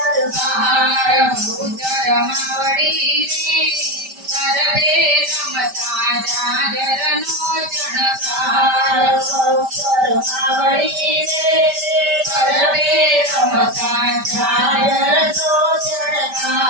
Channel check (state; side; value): late; left; 5.1 ms